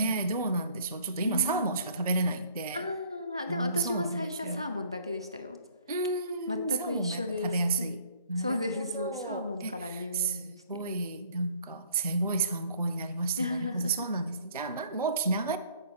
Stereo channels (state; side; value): inverted; both; correlation -0.57